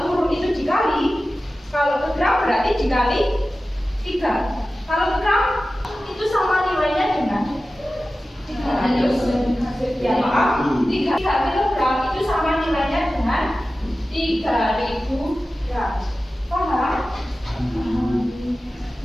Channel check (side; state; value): both; normal; correlation 0.95